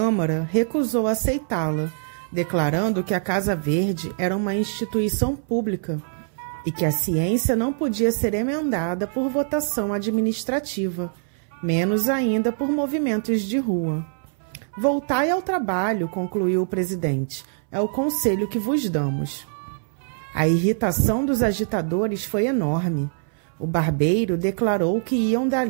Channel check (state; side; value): silent; left; 61 dB below the other